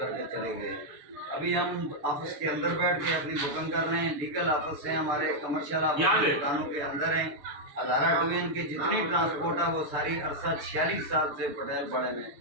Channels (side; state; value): left; late; 6.8 ms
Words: चले गए। अभी हम ऑफिस के अंदर बैठ के अपनी बुकिंग कर रहे हैं। लीगल ऑफिस है हमारे, कमर्शियल ऑफिस दुकानों के अंदर हैं। हज़ारा डिवीजन की जितनी ट्रांसपोर्ट है वो सारी अरसा 46 साल से पटेल पड़े में